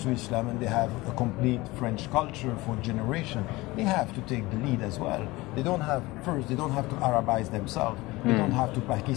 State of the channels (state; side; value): quieter; right; 20.8 dB